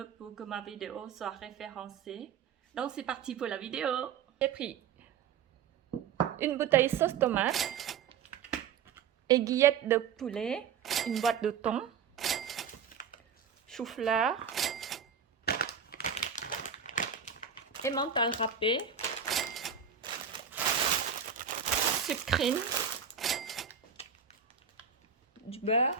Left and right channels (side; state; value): left; quieter; 7.3 dB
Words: pour que ma vidéo soit référencée. Donc c'est parti pour la vidéo. J'ai pris une bouteille sauce tomate, aiguillette de poulet, une boîte de thon, chou-fleur, emmental râpé, sucrine, du